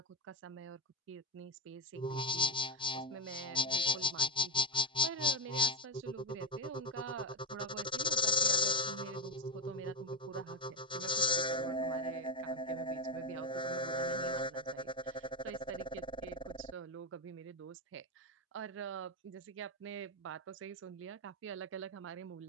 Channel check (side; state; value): both; normal; correlation 0.06